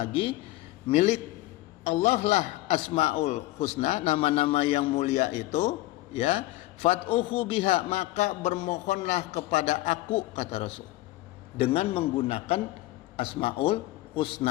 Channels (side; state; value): right; quieter; 17.7 dB